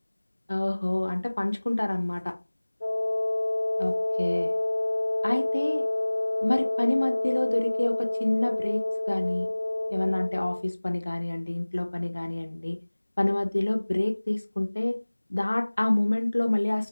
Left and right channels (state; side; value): inverted; both; correlation -1.00